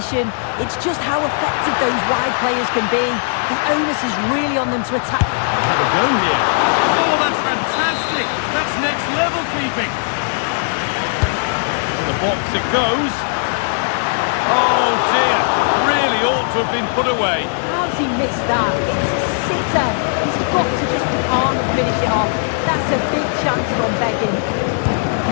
It's just how effective those wide players can be. The onus is really on them to attack. Have a go here. Oh, that's fantastic. That's next level keeping. To the box it goes. Oh dear, really ought to have been put away. How's he missed that? It's a sitter. He's got to just be calm and finish it off. That's a big chance from Begging.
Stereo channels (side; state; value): right; silent; digital silence